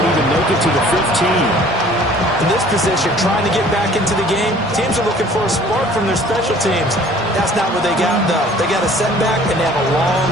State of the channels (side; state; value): both; normal; correlation 0.52